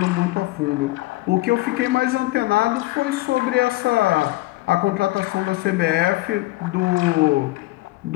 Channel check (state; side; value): quieter; right; 19.1 dB